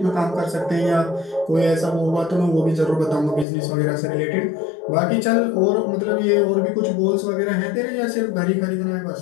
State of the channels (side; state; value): right; drops out; at 3.5 s